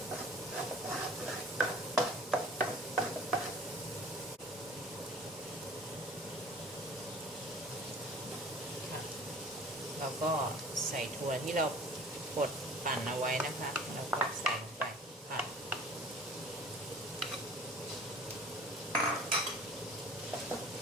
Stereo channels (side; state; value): both; normal; correlation 0.46